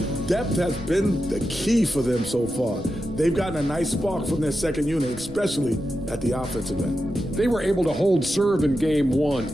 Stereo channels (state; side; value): noise; right; rumble, 15 dB below the sound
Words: Depth has been the key for them so far. They've gotten a nice spark from their second unit, especially at the offensive end. They were able to hold serve in game